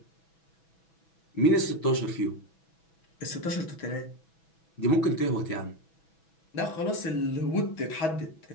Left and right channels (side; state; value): right; late; 6.1 ms